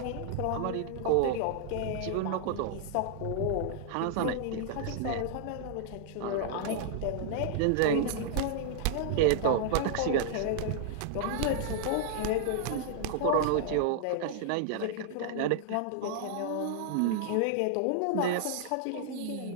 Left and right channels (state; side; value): different; both; correlation -0.01